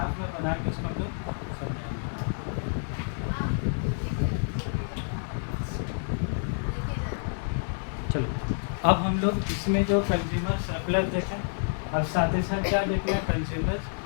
में बना के उसको हम लोग समझाएंगे। चलो अब हम लोग इसमें जो कंज्यूमर सरप्लस देखें, और साथ ही साथ क्या देखना है?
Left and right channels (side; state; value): right; silent; digital silence